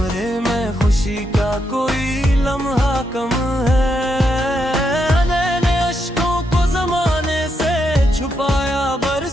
में खुशी का कोई लम्हा कम है। मैंने अश्कों को जमाने से छुपाया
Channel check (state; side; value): normal; both; correlation 0.81